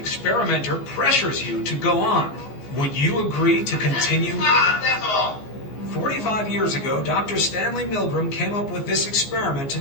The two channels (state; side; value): late; right; 14 ms